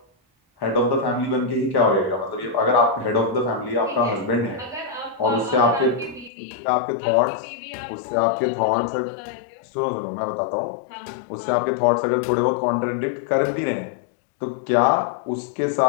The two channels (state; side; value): drops out; right; at 6.3 s